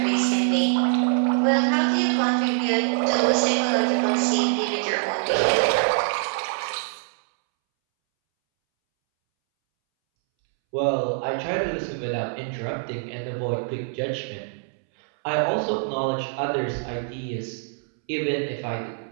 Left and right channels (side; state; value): left; silent; 62 dB below the other